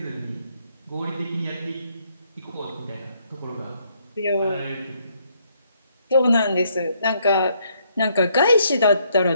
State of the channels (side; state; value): both; inverted; correlation -0.71